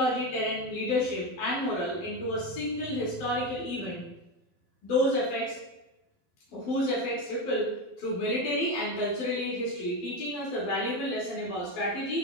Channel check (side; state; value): right; late; 12 ms